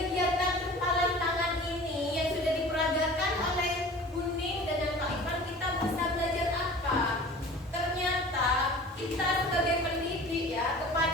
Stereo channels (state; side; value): normal; both; correlation 0.42